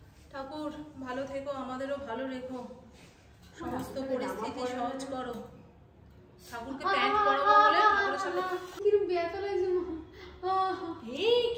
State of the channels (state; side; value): identical; both; correlation 1.00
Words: ठाकुर ভালো থেকো, আমাদেরও ভালো রেখো, সমস্ত পরিস্থিতি সহজ করো। ঠাকুরকে প্যান্ট পরাবো বলে ঠাকুরের সাথে কিরকম ব্যথা লাগছে মা। এই